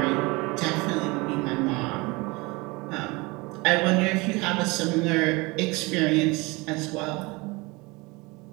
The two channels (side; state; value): left; quieter; 25.0 dB